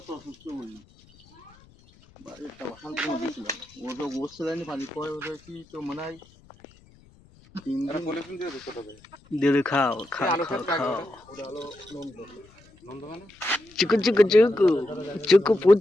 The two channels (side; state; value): left; noise; rumble, 27 dB below the sound